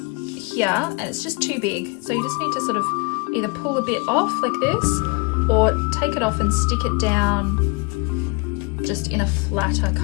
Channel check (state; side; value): quieter; right; 29.5 dB